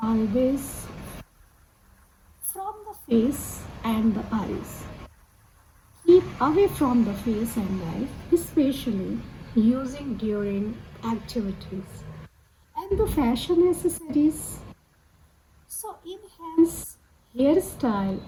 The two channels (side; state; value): both; identical; correlation 1.00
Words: always from the face and the eyes. Keep away from the face and eyes, especially using during activities. And the fashion accessories. So enhance hairstyle